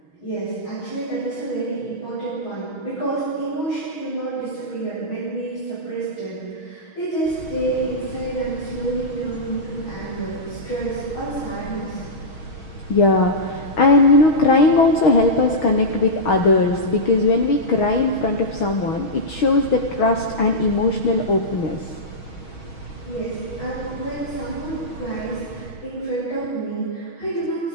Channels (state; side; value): late; right; 6.3 ms